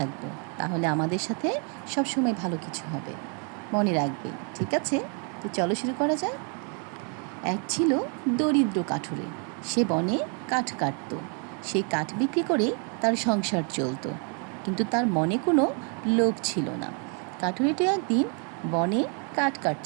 তাহলে আমাদের সাথে সবসময় ভালো কিছু হবে। মনে রাখবে, ঠিক আছে? তো চলো শুরু করা যাক। এক ছিল দরিদ্র কাঠুরে। সে বনে কাঠ কাটত। সেই কাঠ বিক্রি করে তার সংসার চলত, কিন্তু তার মনে কোনো লোভ ছিল না। কাঠুরিটি একদিন বনে কাঠ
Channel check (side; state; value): left; quieter; 38.5 dB